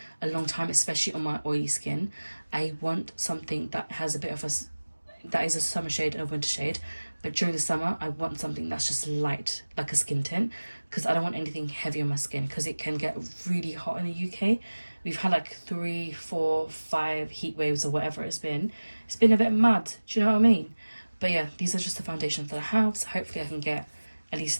a long time, especially on my oily skin. I want something that has a bit of that is a summer shade and a winter shade, but during the summer I want something that's just light, like a skin tint, because I don't want anything heavy on my skin because it can get really hot in the UK. We've had like 3, 4, 5 heat waves or whatever it's been. It's been a bit mad, do you know what I mean? But yeah, these are just the foundations that I have, so hopefully I can get at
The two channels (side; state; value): both; inverted; correlation -1.00